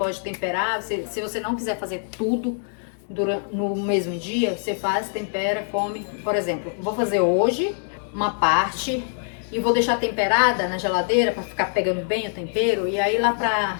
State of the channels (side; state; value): right; silent; digital silence